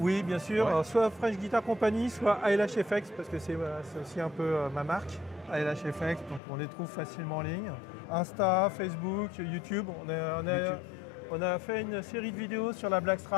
bien sûr. Ouais. Alors, soit Fresh Guitar Company, soit ALHFX, parce que c'est aussi un peu ma marque. ALHFX, donc on les trouve facilement en ligne. Insta, Facebook, YouTube. On a fait une série de vidéos sur la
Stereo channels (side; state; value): right; drops out; at 6.4 s